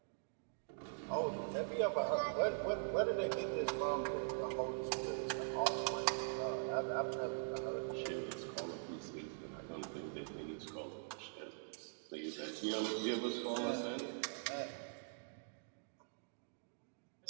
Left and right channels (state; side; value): silent; left; digital silence